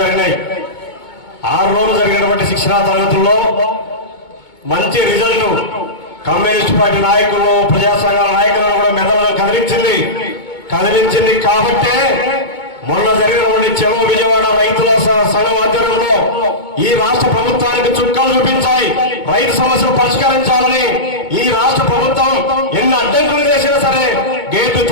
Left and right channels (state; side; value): late; right; 2.2 ms